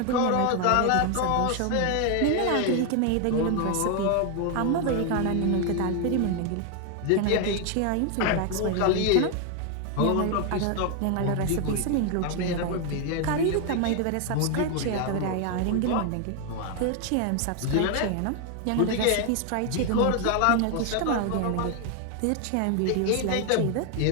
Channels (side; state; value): both; different; correlation 0.01